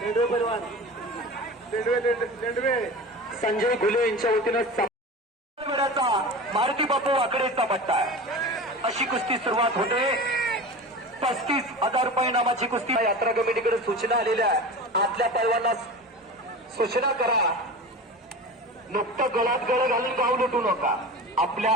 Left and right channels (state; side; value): normal; both; correlation 0.32